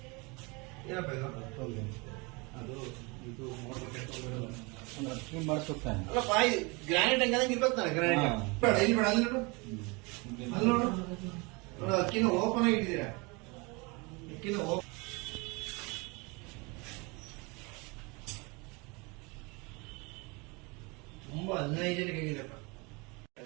ಏನಪ್ಪ ಇದು? ಅದು ಇದು ಮಾಡಿಸುತ್ತಾನೆ. ಅಲ್ಲಪ್ಪ, ಗ್ರಾನೈಟ್ ಹಂಗಂಗೆ ಇರ್ಬೇಕು ತಾನೆ ಗ್ರಾನೈಟ್. ಬೇಡ ಇಲ್ಲಿ ಬೇಡ, ಅಲ್ಲಿ ನೋಡು, ಅಲ್ಲಿ ನೋಡು ನೋಡು. ಅಕ್ಕಿನ ಓಪನ್ ಆಗಿ ಇಟ್ಟಿದ್ದೀರಾ. ಅಕ್ಕಿನ ತುಂಬಾ ಹೈಜೆನಿಕ್ ಆಗಿದೆಪ್ಪ.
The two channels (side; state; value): left; quieter; 28.1 dB